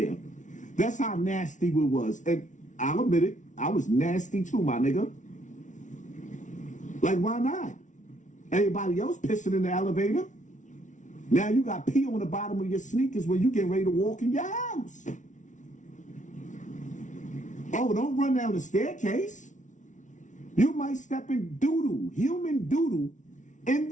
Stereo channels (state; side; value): late; right; 0.37 ms